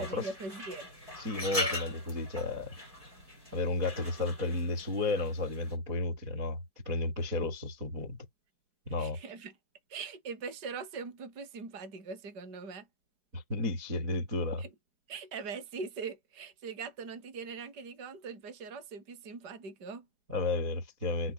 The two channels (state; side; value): late; left; 4.8 ms